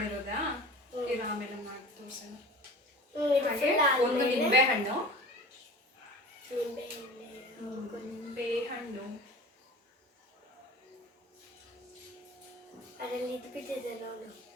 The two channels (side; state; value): both; normal; correlation 0.38